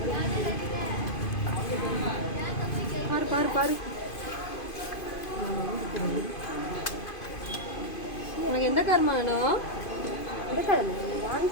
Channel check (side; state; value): right; late; 2.5 ms